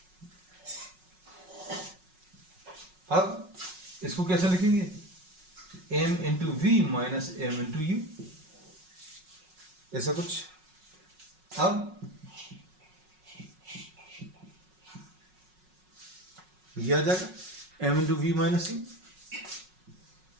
अब इसको कैसे लिखेंगे, m into v minus m into u, ऐसा कुछ। अब ये आ जाएगा m into v minus u,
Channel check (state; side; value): late; left; 5.4 ms